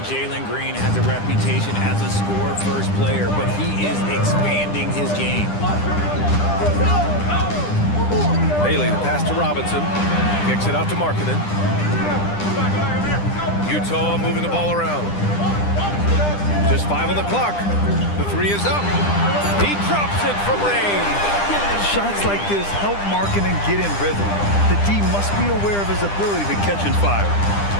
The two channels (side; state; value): right; late; 10 ms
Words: Jalen Green has a reputation as a score-first player, but he is expanding his game. Bailey, the pass to Robinson. Kicks it out to Markkanen. Utah moving the ball around. Just 5 on the clock. The 3 is up. He drops it from range. Shots like this help Markkanen get in rhythm. The D must be aware of his ability to catch and fire.